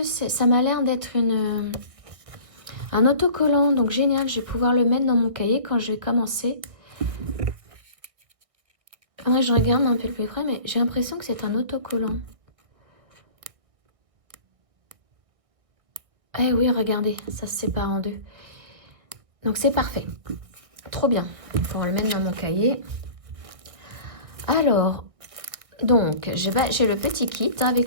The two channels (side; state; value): left; late; 1.6 ms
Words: ça m'a l'air d'être un autocollant. Donc génial, je vais pouvoir le mettre dans mon cahier quand je vais commencer. Faudrait que je regarde un peu le plus près, mais j'ai l'impression que c'est un autocollant. Eh oui, regardez, ça se sépare en deux. Donc c'est parfait. Trop bien. Il faut le mettre dans mon cahier. Alors, donc, j'ai le petit kit